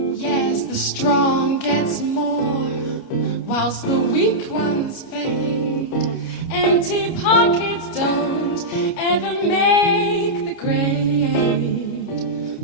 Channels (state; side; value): late; right; 29 ms